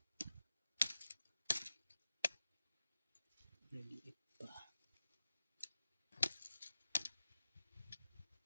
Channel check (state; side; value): inverted; both; correlation -0.92